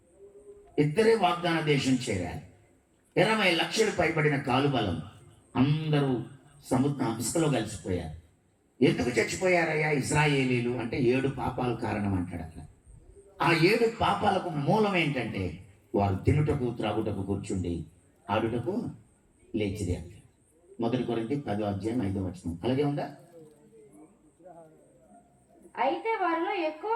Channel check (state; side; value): identical; both; correlation 1.00